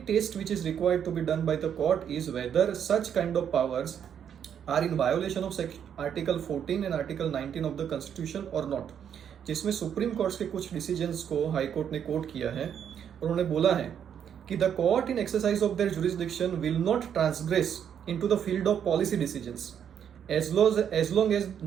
test which is required to be done by the court is whether such kind of powers are in violation of article 14 and article 19 of the constitution और not. जिसमें Supreme Court के कुछ decisions को high court ने coat किया है। उन्होंने बोला है कि the court in exercise of their jurisdiction will not transgress into the field of policy decisions as long as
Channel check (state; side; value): quieter; left; 8.6 dB